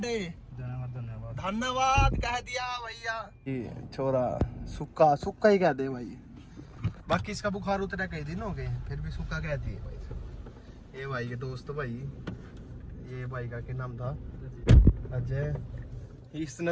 धन्यवाद धन्यवाद कह दिया भैया। ये छोरा सुक्का सुक्का ही कह दे भाई, बाकी इसका बुखार उतरा कई दिन हो गए फिर भी सुक्का कहती है भाई। ये भाई के दोस्त भाई, ये भाई का क्या नाम था, अजय। इसने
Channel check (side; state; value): both; identical; correlation 1.00